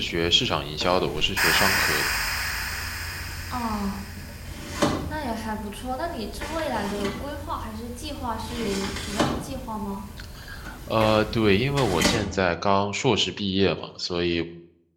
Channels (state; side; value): identical; both; correlation 1.00